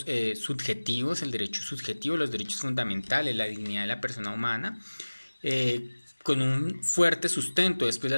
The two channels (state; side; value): inverted; both; correlation -1.00